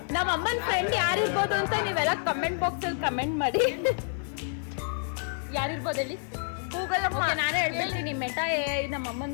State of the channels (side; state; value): right; silent; 59 dB below the other